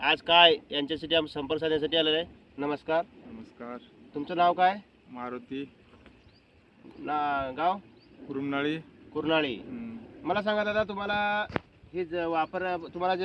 काय यांच्यासाठी आम्ही संपर्क साधण्यासाठी आलेलो आहे. नमस्कार. नमस्कार. तुमचं नाव काय? मारुती गाव? कुरुमनाळी. कुर्नाळी. मला सांगा दादा, तुम्हाला हे तुम्हाला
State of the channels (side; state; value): both; identical; correlation 1.00